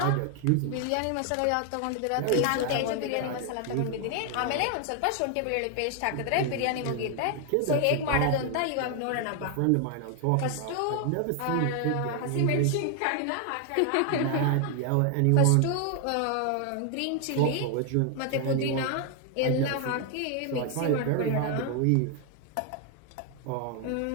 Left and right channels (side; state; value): both; different; correlation 0.00